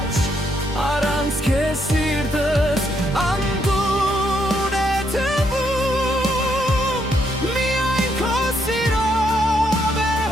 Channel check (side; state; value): both; normal; correlation 0.75